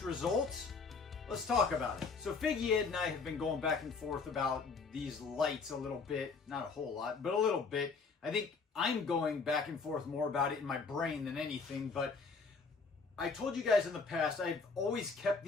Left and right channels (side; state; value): right; quieter; 4.7 dB